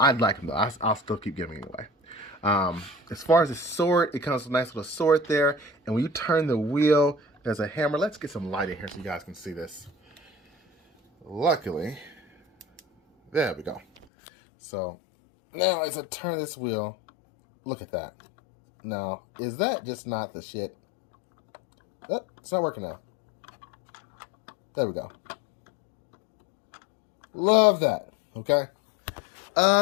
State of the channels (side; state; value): right; drops out; at 14.1 s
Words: like them though. I'll still keep giving anyway. As far as the sword, it comes with a nice little sword there. And when you turn the wheel, there's a hammer. Let's get some light in here so you guys can see this. Luckily, there we go. So now as I turn this wheel, look at that. Now, is that just not the shit? Oh, it's not working now. There we go. Love that. Okay.